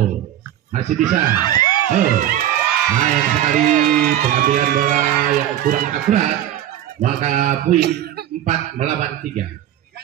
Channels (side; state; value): left; quieter; 11.8 dB